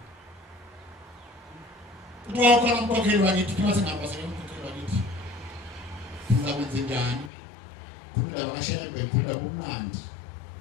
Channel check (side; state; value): right; drops out; at 7.3 s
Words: uthi wakhona umkhokheli wakithi uthi ngasengapha umkhokheli wakithi ngakwenze njani kumindaba kaShembe ngifunda kumnandi